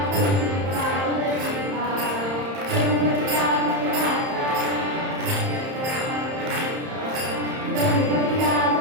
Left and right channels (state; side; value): late; left; 31 ms